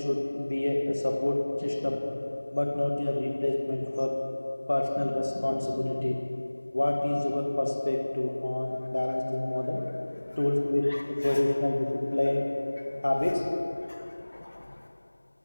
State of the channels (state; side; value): inverted; both; correlation -1.00